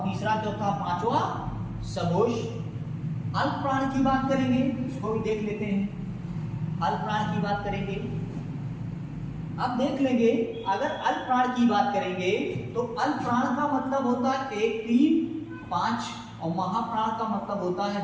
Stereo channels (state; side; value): identical; both; correlation 1.00